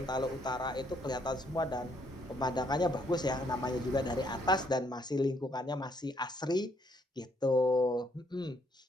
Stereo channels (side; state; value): both; normal; correlation 0.69